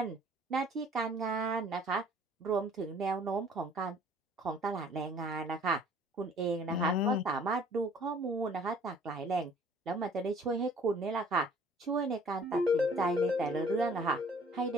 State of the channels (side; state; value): both; normal; correlation 0.55